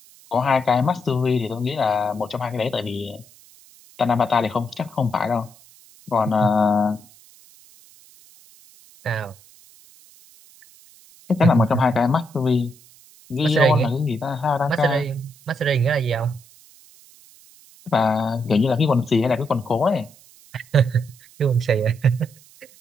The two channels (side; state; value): right; noise; hiss, 25 dB below the sound